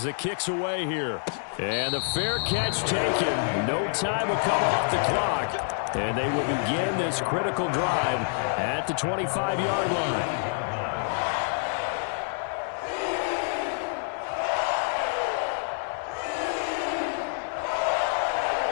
the kick's away here. And the fair catch taken. No time will come off the clock. And they will begin this critical drive at the 25-yard line.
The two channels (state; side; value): silent; right; digital silence